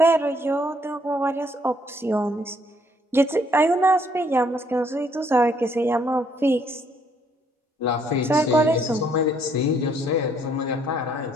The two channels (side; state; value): both; normal; correlation 0.67